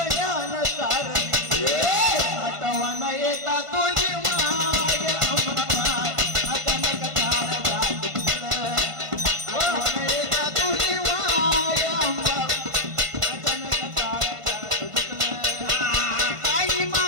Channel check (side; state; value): left; late; 1.5 ms